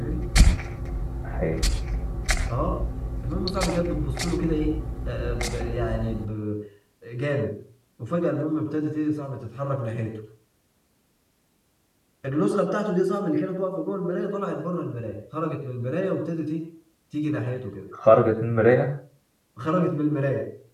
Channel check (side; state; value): both; identical; correlation 1.00